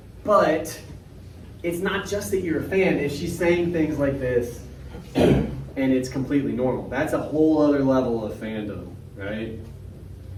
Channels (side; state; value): both; identical; correlation 1.00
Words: But it's not just that you're a fan. If she's saying things like this and it's completely normal, that's a whole other level of fandom, right?